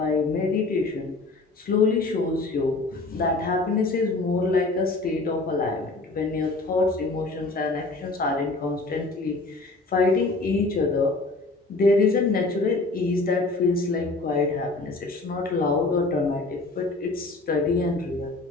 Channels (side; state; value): right; quieter; 3.3 dB